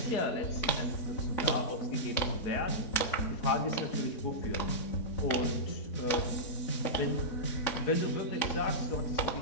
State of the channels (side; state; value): right; late; 3.6 ms